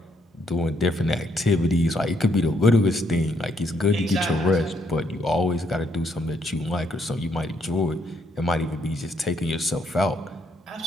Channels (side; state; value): both; normal; correlation 0.72